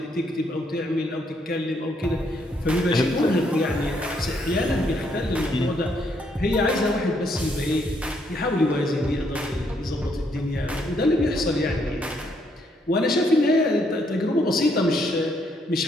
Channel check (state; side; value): normal; both; correlation 0.72